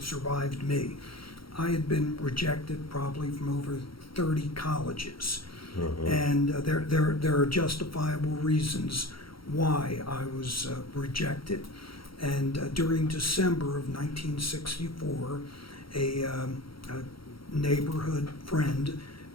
me. I had been rejected probably from over 30 colleges, and there are justifiable reasons why I was rejected. And during December of 1964, a neighborhood friend,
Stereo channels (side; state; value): right; late; 0.74 ms